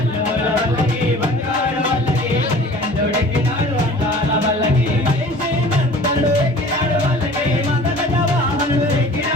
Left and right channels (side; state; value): both; normal; correlation 0.45